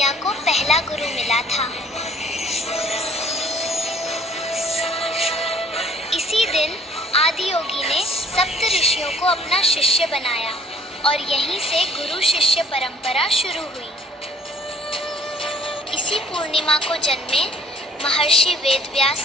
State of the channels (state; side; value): normal; both; correlation 0.56